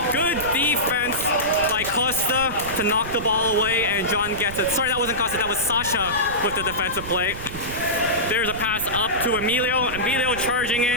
Good defense by Costa to knock the ball away, and John gets it. Sorry, that wasn't Costa. That was Sasha with the defensive play. There's a pass up to Emilio. Emilio charging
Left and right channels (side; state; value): right; noise; rumble, 11 dB below the sound